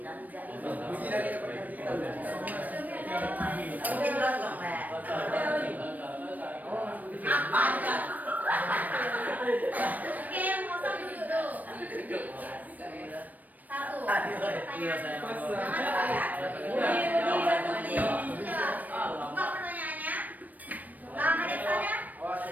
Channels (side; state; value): left; late; 0.081 ms